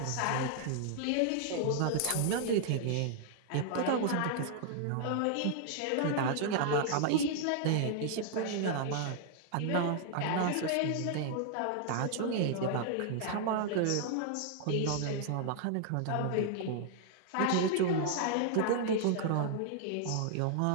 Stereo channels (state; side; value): different; both; correlation 0.00